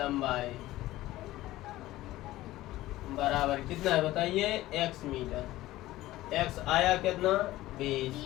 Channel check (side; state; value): right; quieter; 16.4 dB